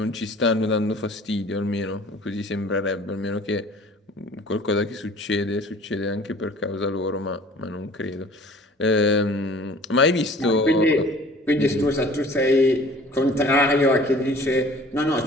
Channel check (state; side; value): normal; both; correlation 0.49